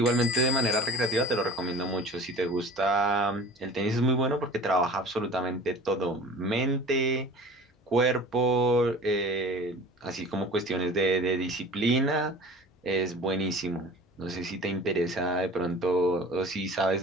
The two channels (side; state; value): both; normal; correlation 0.42